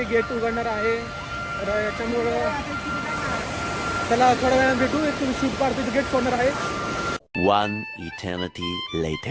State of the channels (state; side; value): identical; both; correlation 1.00